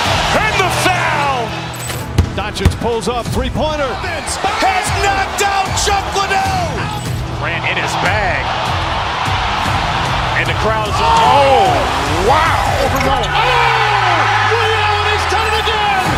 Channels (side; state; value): both; identical; correlation 1.00